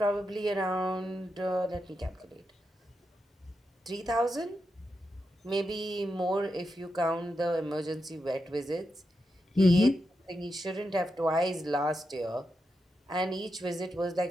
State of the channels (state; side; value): normal; both; correlation 0.87